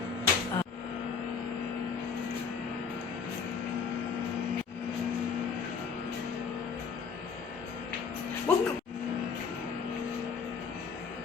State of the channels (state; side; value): quieter; right; 5.9 dB